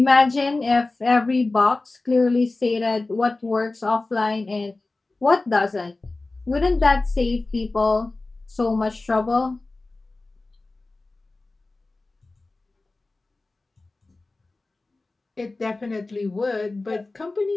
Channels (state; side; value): quieter; right; 3.3 dB